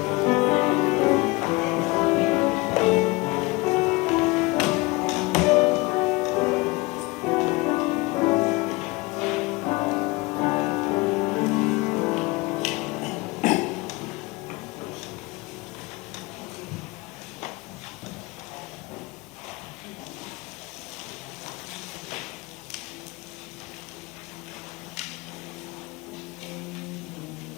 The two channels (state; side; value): quieter; right; 23.8 dB